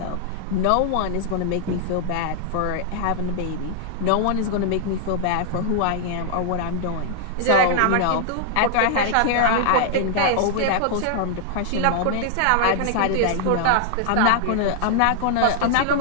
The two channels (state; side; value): different; both; correlation 0.00